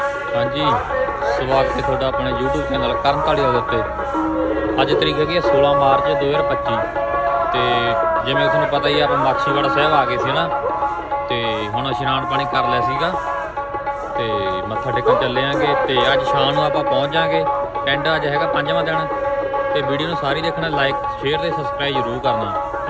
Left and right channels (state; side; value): identical; both; correlation 1.00